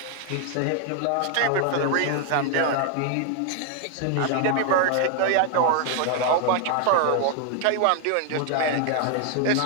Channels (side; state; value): both; different; correlation 0.01